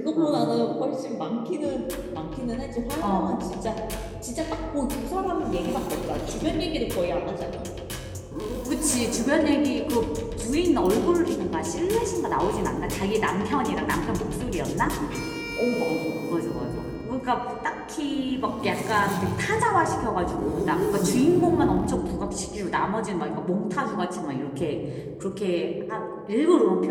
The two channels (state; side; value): identical; both; correlation 1.00